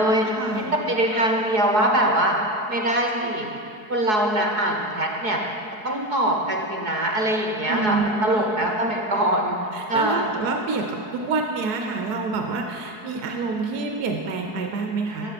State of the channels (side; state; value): left; late; 4.7 ms